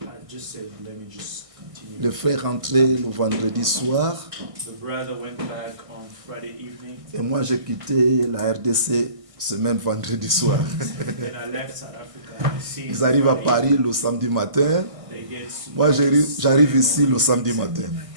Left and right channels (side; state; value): left; late; 1.6 ms